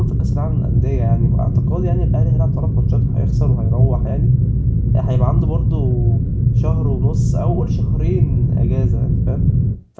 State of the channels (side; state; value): both; identical; correlation 1.00